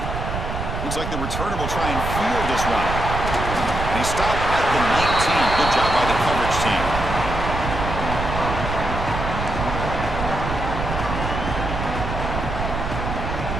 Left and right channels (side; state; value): right; noise; rumble, 4 dB below the sound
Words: Looks like the returner will try and field this one. And he stopped at the 19. Good job by the coverage team.